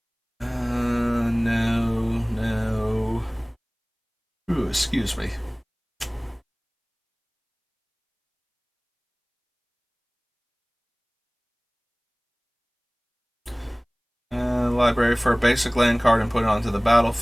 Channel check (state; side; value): identical; both; correlation 1.00